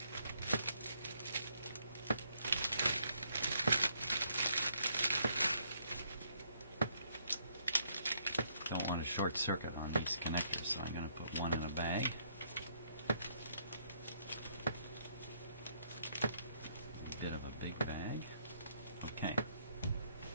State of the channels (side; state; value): both; inverted; correlation -0.70